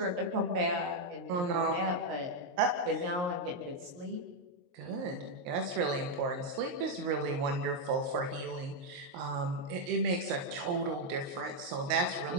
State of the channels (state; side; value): late; left; 23 ms